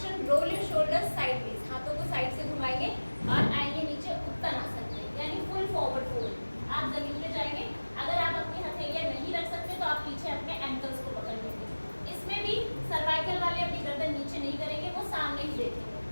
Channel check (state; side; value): inverted; both; correlation -1.00